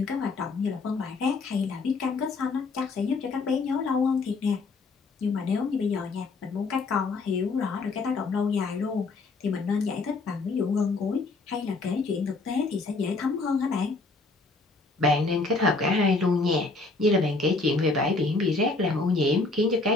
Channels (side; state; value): right; quieter; 3.7 dB